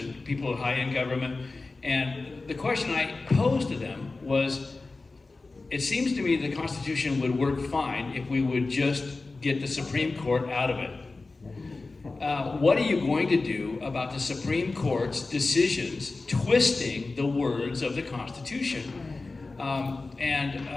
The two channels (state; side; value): quieter; right; 3.6 dB